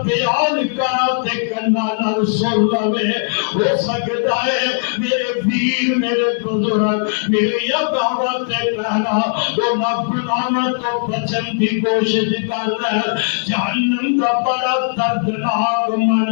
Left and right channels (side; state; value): right; silent; 56 dB below the other